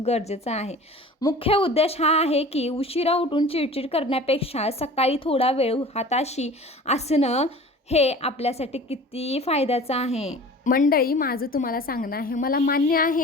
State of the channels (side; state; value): both; normal; correlation 0.41